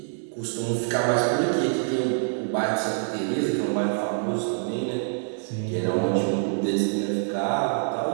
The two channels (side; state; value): left; silent; 61 dB below the other